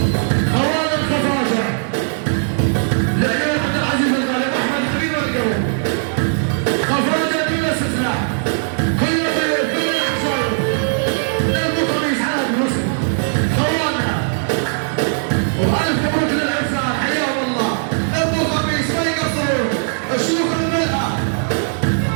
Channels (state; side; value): silent; left; digital silence